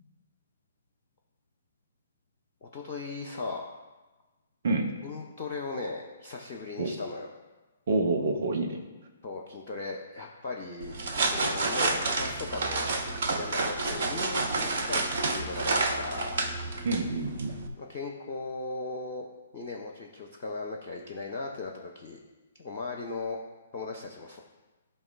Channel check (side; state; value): both; inverted; correlation -0.61